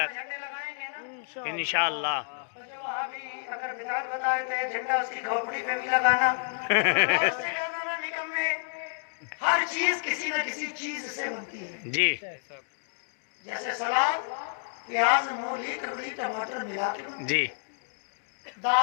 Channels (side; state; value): right; silent; digital silence